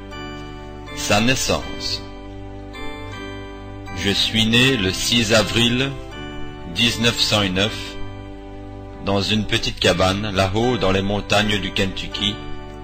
Sa naissance. Je suis né le 6 avril 1909 dans une petite cabane là-haut dans les montagnes du Kentucky,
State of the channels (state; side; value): identical; both; correlation 1.00